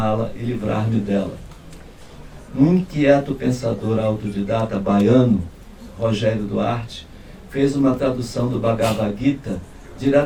e livrar-me dela. Um inquieto pensador autodidata baiano, Rogério Duarte, fez uma tradução do Bhagavad Gita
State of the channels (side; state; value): both; identical; correlation 1.00